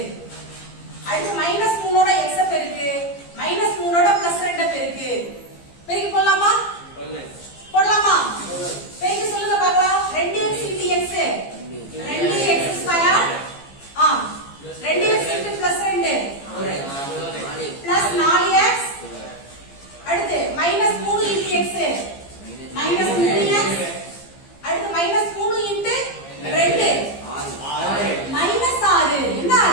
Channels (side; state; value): right; late; 15 ms